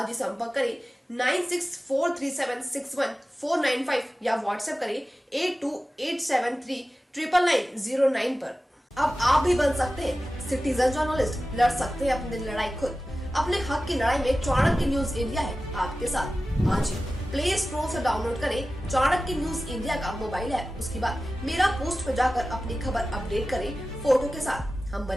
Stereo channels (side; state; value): both; normal; correlation 0.95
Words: ही संपर्क करें 9643761495 या व्हाट्सएप करें 8287399909 पर। अब आप भी बन सकते हैं सिटीजन जर्नलिस्ट, लड़ सकते हैं अपनी लड़ाई खुद। अपने हक की लड़ाई में चाणक्य न्यूज इंडिया है आपके साथ। आज ही प्ले स्टोर से डाउनलोड करें चाणक्य न्यूज इंडिया का मोबाइल ऐप। उसके बाद मेरा पोस्ट पर जाकर अपनी खबर अपडेट करें फोटो के साथ। हम